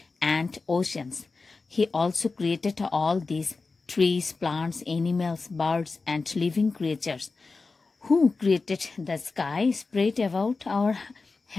and oceans. He also created all these trees, plants, animals, birds, and living creatures. Who created the sky spread about our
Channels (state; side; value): quieter; right; 4.0 dB